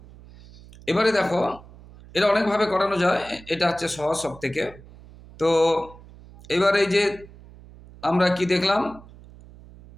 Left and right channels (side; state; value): right; noise; hum, 21 dB below the sound